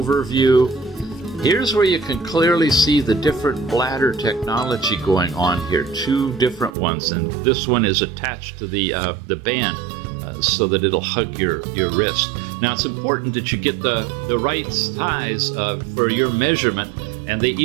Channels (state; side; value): drops out; left; at 6.8 s